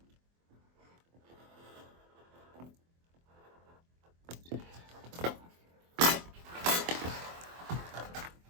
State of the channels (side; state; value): left; late; 24 ms